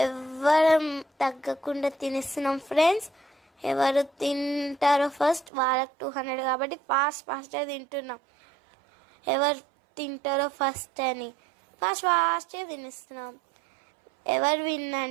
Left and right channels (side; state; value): left; drops out; at 5.5 s